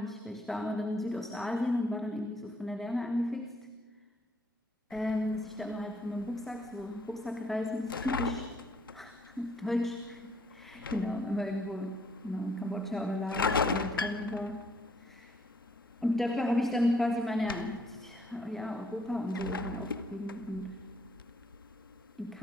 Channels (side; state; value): both; normal; correlation 0.67